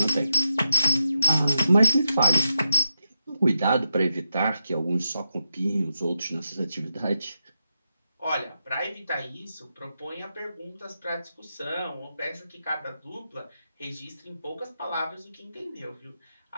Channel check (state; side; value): inverted; both; correlation -0.84